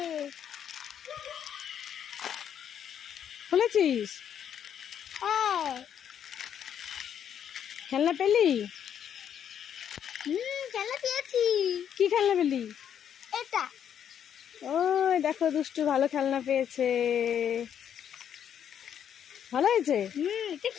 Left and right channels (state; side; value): quieter; right; 9.0 dB